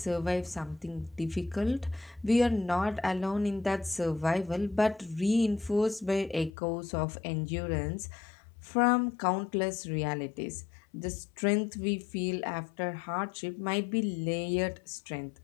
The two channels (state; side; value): drops out; right; at 6.5 s